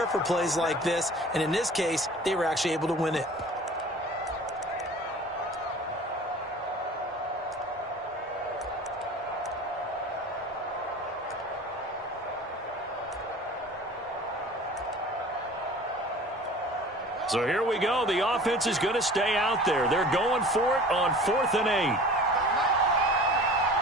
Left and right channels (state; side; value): normal; both; correlation 0.42